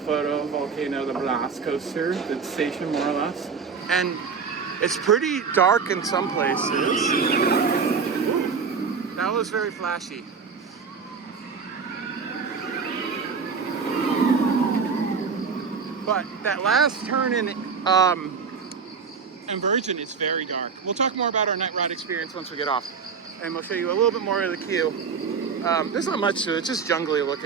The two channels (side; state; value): left; quieter; 5.6 dB